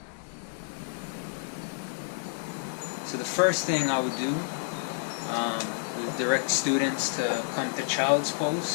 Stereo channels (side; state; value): right; silent; digital silence